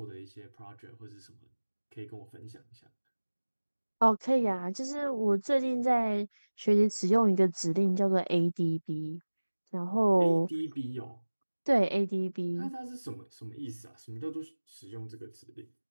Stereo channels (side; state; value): both; inverted; correlation -1.00